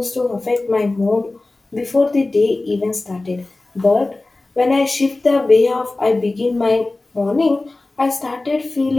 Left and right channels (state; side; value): quieter; right; 3.1 dB